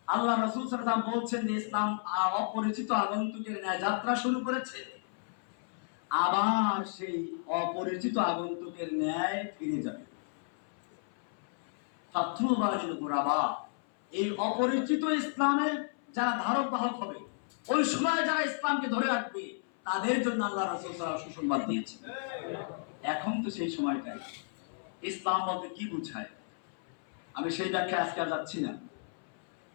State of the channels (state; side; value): silent; right; 56 dB below the other